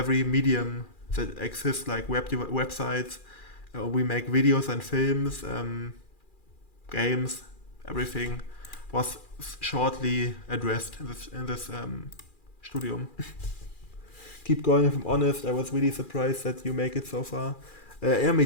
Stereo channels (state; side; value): late; right; 2.4 ms